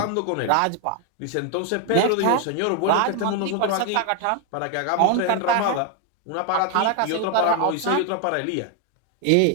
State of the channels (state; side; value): different; both; correlation 0.01